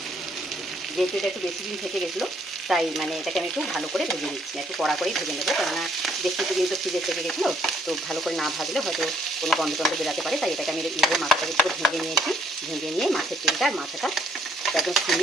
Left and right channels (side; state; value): both; normal; correlation 0.67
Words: গেছিলো, তাই মানে এটাকে আমি একটু ভালো করে ভেজে নিচ্ছি, একটু কড়া করেই ভেজে নেবো, কেননা বেশ কিছুদিন তো ফ্রিজের থেকে গেছিলো। তো ভালো করে না ভাজলে হয়তো কোনো গন্ধ টন্ধ বেরাতে পারে, তাই এটাকে আমি এইভাবে মাথাটাকে একটু ভেঙে নিয়েছি। ভেঙে নিয়ে মাছের তেলটা আর মাথাটা একদম